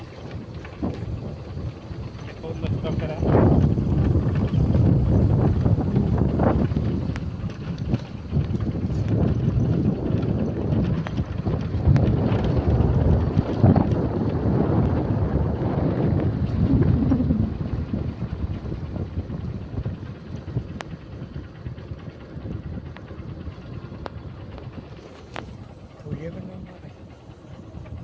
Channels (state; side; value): identical; both; correlation 1.00